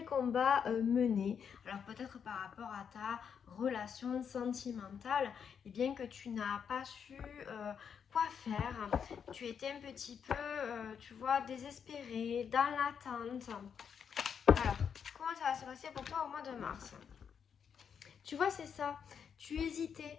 combat mener. Alors peut-être par rapport à ta relation sentimentale, et bien que tu n'as pas su quoi faire. Tu étais un petit peu, tu vois, désespérée, dans l'attente. Alors, comment ça va se passer pour toi au mois de mars? Tu vois, c'est ça. Tu hésitais.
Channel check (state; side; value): quieter; right; 7.3 dB